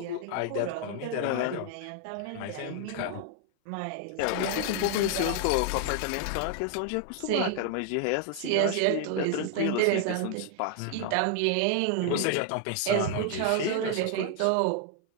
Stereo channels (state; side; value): different; both; correlation 0.00